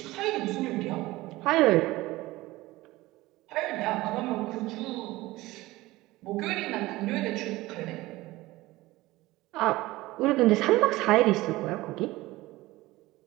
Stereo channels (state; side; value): quieter; left; 18.8 dB